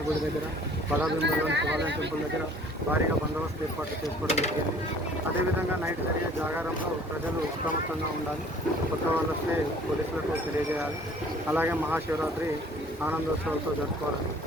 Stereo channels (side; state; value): both; normal; correlation 0.52